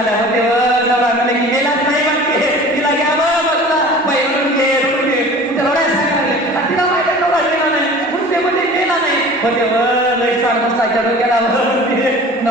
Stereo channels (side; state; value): both; normal; correlation 0.42